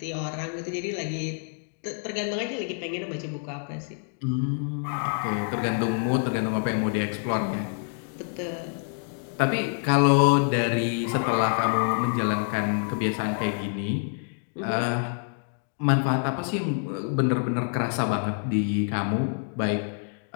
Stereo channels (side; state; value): right; silent; 59 dB below the other